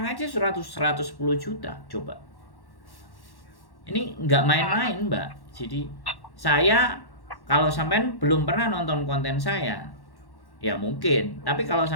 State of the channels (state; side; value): late; right; 1.1 ms